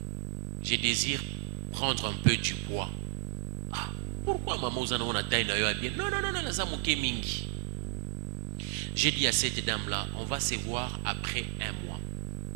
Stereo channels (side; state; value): left; silent; digital silence